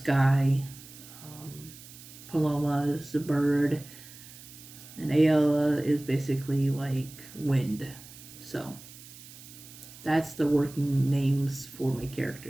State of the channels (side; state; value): right; noise; hiss, 18 dB below the sound